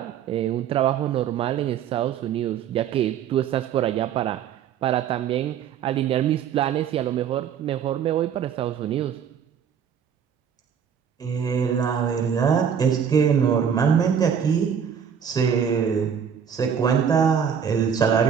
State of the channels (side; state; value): left; quieter; 7.9 dB